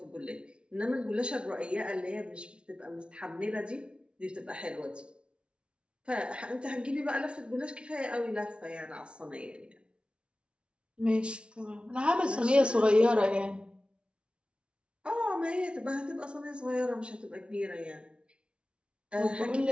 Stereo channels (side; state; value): left; late; 0.058 ms